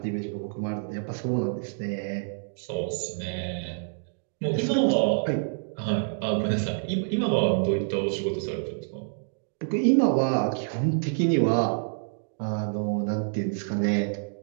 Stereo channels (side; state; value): left; silent; digital silence